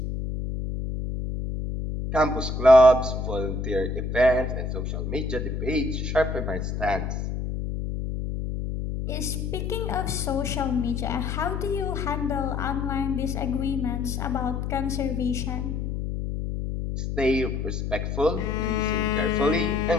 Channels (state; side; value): noise; left; hum, 3 dB below the sound